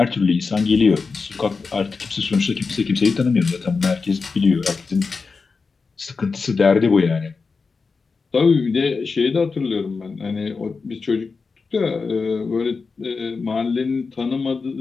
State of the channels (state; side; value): quieter; right; 4.6 dB